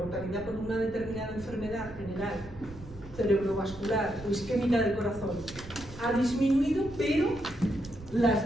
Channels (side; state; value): right; noise; rumble, 16 dB below the sound